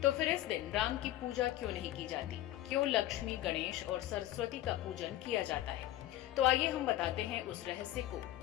फिर इस दिन राम की पूजा क्यों नहीं की जाती? क्यों लक्ष्मी, गणेश और सरस्वती का पूजन किया जाता है? तो आइए हम बताते हैं उस रहस्य को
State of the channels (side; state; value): right; quieter; 14.6 dB